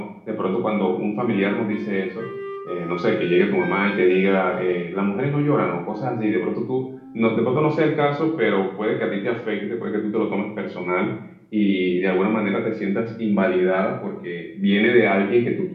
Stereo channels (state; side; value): identical; both; correlation 1.00